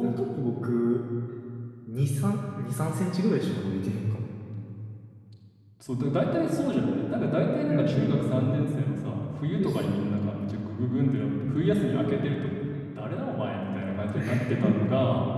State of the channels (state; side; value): identical; both; correlation 1.00